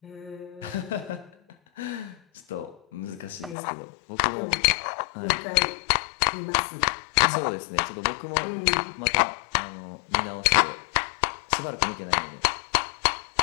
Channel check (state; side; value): drops out; right; at 3.6 s